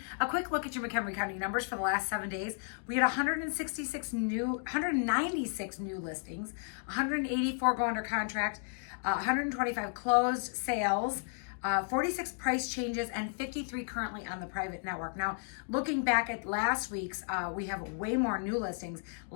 A quick look at your McHenry County numbers for the last 7 days. We had 196 new listings, 184 go under contract, 125 closed sales, 46 price changes, and 53 currently on the private network. Now, looking back at last week's, we have way more new listings.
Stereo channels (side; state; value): right; silent; 56 dB below the other